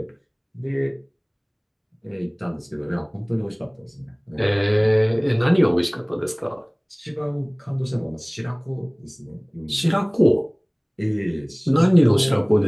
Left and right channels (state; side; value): identical; both; correlation 1.00